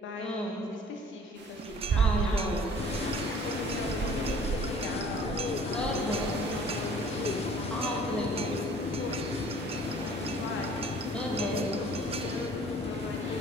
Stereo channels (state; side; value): normal; both; correlation 0.51